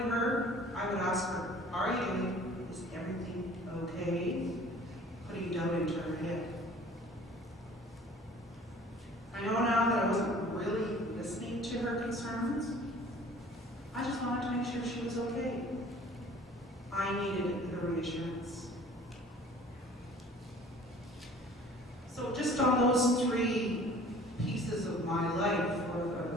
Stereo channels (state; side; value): normal; both; correlation 0.49